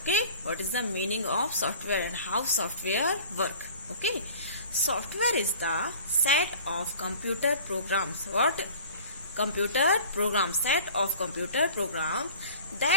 what is the meaning of software and how software work? Okay, software is the set of computer programs. What? Computer programs, set of computer programs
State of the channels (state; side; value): inverted; both; correlation -0.45